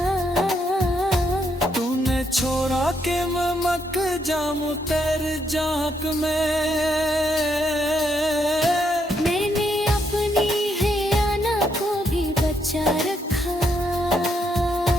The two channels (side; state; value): both; normal; correlation 0.77